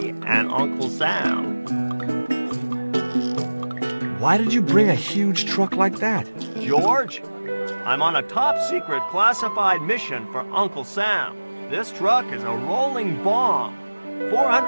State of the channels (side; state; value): both; inverted; correlation -1.00